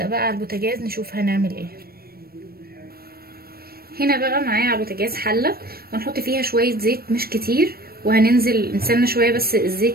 بقى على البوتاجاز نشوف هنعمل ايه. هنا بقى معايا على البوتاجاز حلة، وهنحط فيها شوية زيت مش كتير، وهننزل نستنى شوية بس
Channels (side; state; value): left; late; 0.44 ms